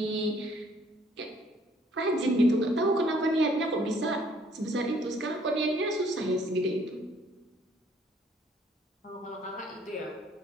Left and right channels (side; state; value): both; normal; correlation 0.62